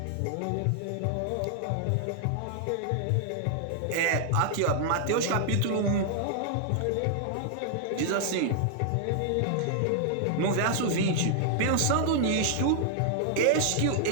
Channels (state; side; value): different; both; correlation 0.00